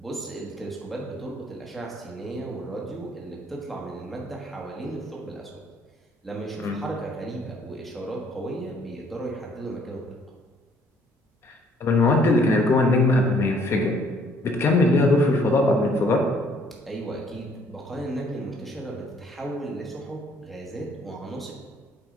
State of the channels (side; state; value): both; normal; correlation 0.62